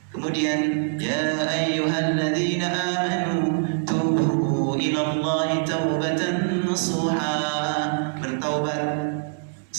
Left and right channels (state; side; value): silent; left; digital silence